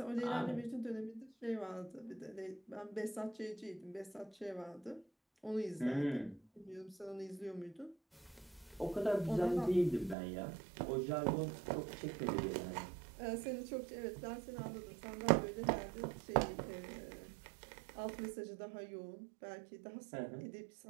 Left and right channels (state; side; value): drops out; left; at 10.2 s